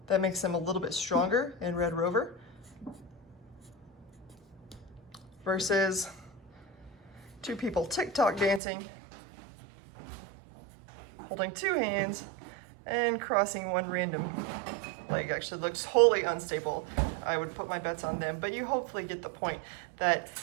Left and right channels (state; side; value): drops out; left; at 8.6 s